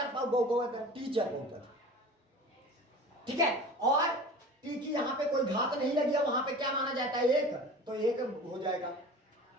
बहुपद है, टी चर बहुपद, ठीक है। और टी की यहाँ पे कोई घात नहीं लगी है, वहां पे क्या माना जाता है 1, तो 1 हो जाएगा।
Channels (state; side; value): normal; both; correlation 0.39